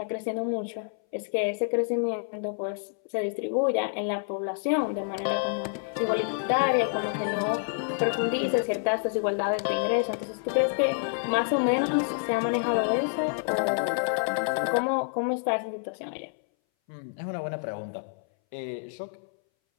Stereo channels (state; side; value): silent; right; 59 dB below the other